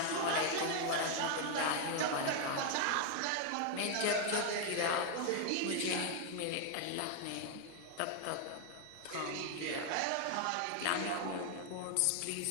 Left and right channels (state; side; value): different; both; correlation 0.00